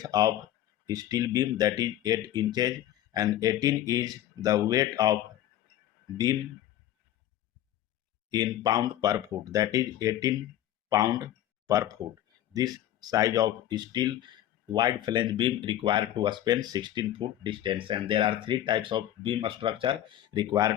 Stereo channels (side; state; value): right; quieter; 12.6 dB